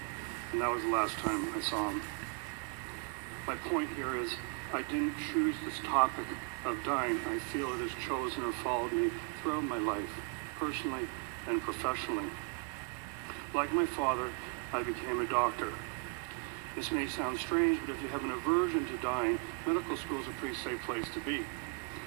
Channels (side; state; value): left; quieter; 35.7 dB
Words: and that was the last time I saw him. My point here is, I didn't choose this topic of dying. I feel it has chosen or followed me throughout my life, personally and professionally. Like my father, I became a doctor. This may sound strange, but if you have an aversion to dying, medical school is a pretty safe place to be.